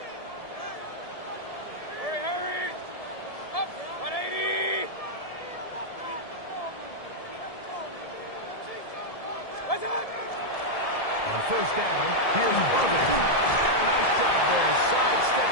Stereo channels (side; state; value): right; late; 1.7 ms